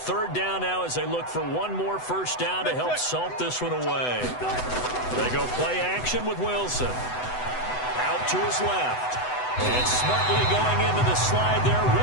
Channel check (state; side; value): late; right; 8.0 ms